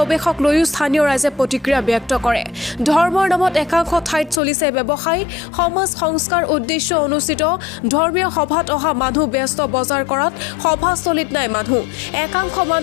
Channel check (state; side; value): drops out; right; at 4.4 s